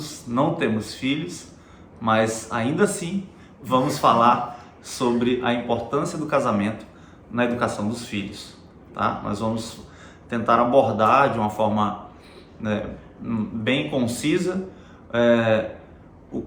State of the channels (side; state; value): both; identical; correlation 1.00